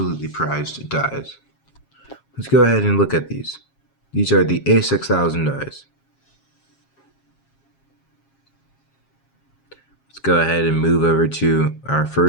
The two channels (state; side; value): late; right; 7.4 ms